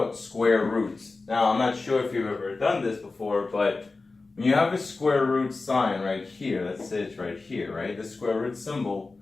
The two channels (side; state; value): right; quieter; 3.7 dB